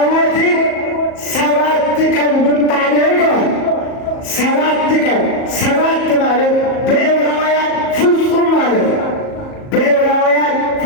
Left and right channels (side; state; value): right; late; 37 ms